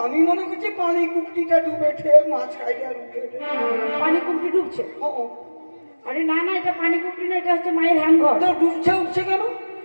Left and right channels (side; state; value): both; inverted; correlation -1.00